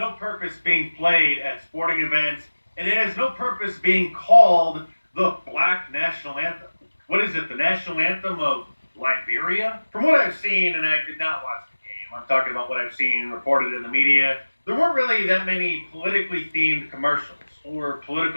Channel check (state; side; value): inverted; both; correlation -1.00